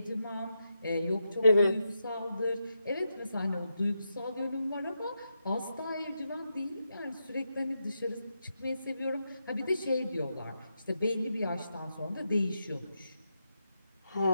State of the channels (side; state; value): both; inverted; correlation -0.85